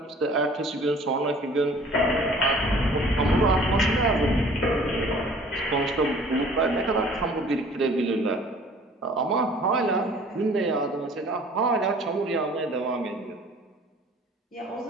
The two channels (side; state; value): both; normal; correlation 0.51